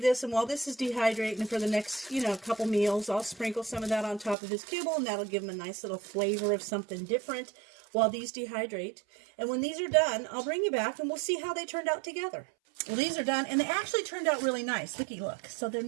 this, and while this is dehydrating for the next, couple meals, I'll sprinkle some of that on top of his kibble, and that'll give him a nice little flavor of something different while these dehydrate. And when these are done, I'll bring you back, and we'll see how they turned out together. Well, these are done, and they actually turned out really nice. Looky, look. So they're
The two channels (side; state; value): left; drops out; at 4.4 s